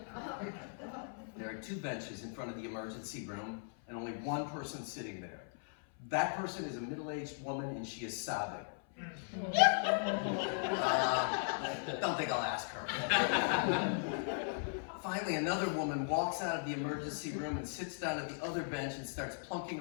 There are 2 benches in front of the emergency room and only one person sitting there. That person is a middle-aged woman and she is sobbing. Don't think I'll ask her. Finally, another woman walks out of the emergency room and sits down at the other bench and starts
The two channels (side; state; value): right; silent; 52 dB below the other